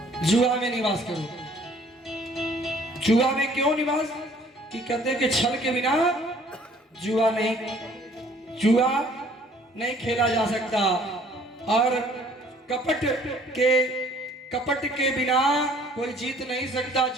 जुआ में निवास करो। जुआ में क्यों निवास, कि कहते हैं कि छल के बिना जुआ नहीं खेला जा सकता, और कपट के बिना कोई जीत नहीं सकता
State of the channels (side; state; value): both; normal; correlation 0.57